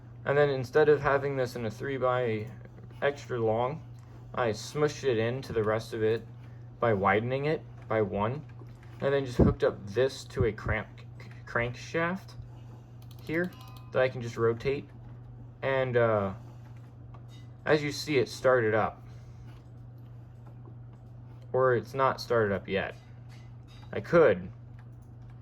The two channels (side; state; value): both; identical; correlation 1.00